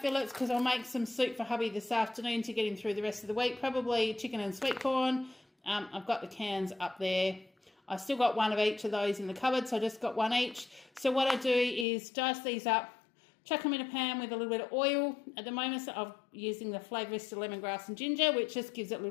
because I'll make some soup for hubby this afternoon to get him through the rest of the week. Probably chicken and sweet corn. I've got the cans up there. I still got 1 of each of those in the cupboard, so I just got 1 each. So what I do is dice these up, chuck them in a pan with a little bit of oil. At the moment, so I'm using the Flavourista lemongrass and ginger, which just gives it a little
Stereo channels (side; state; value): right; drops out; at 11.9 s